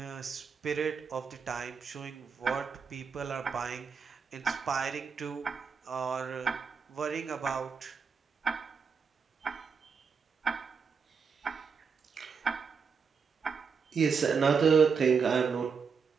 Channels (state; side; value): quieter; left; 5.8 dB